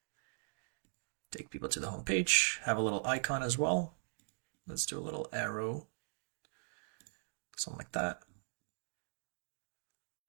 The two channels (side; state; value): left; silent; digital silence